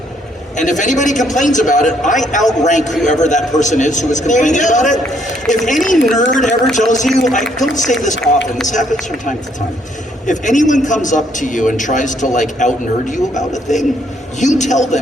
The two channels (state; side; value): normal; both; correlation 0.69